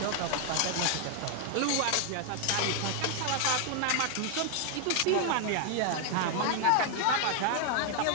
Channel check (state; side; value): different; both; correlation 0.00